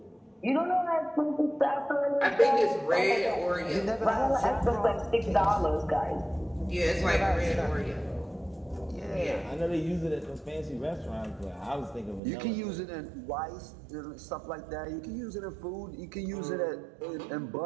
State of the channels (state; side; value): drops out; left; at 12.2 s